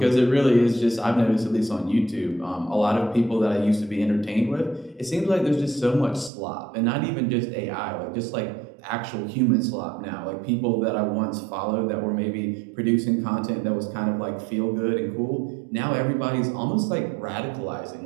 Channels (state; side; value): drops out; left; at 6.3 s